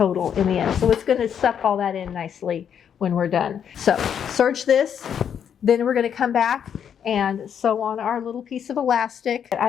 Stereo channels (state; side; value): quieter; right; 8.3 dB